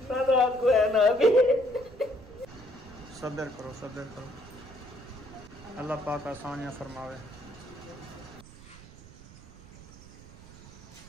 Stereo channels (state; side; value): noise; right; rumble, 18 dB below the sound